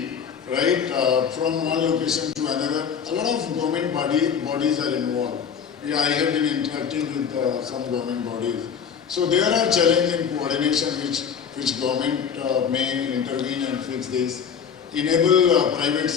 right, from one location to another, a lot of government bodies are involved. I have been interacting with some government bodies. So there are challenges in coordination which government may intervene and fix this. Enable private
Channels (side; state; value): right; quieter; 7.2 dB